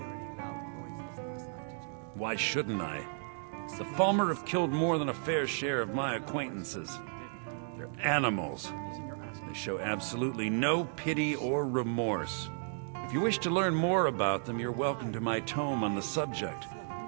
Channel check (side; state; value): left; silent; digital silence